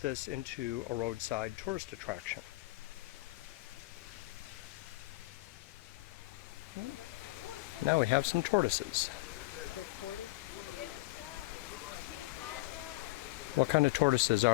this into a roadside tourist attraction. Now we have some tortoises. The tortoise? What kind of tortoises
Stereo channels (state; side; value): quieter; right; 21.2 dB